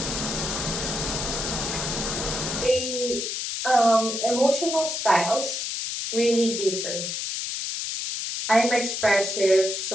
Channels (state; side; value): noise; left; hiss, 3 dB below the sound